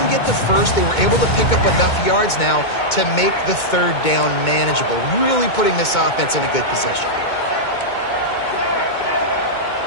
get the first, they were able to pick up enough yards now to make the third down manageable, really putting this offense in a good position.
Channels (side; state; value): right; late; 2.2 ms